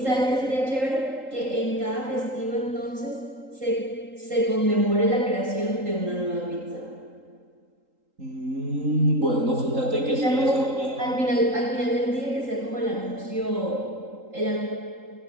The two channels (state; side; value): late; left; 3.8 ms